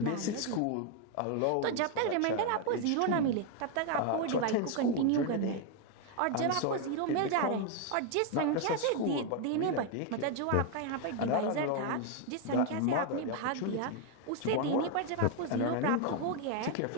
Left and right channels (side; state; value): both; different; correlation 0.01